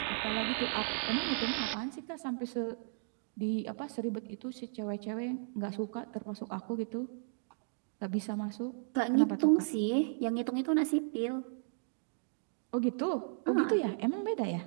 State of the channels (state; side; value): silent; left; digital silence